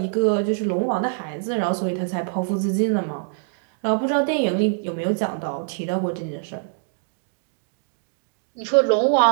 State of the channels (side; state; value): left; silent; digital silence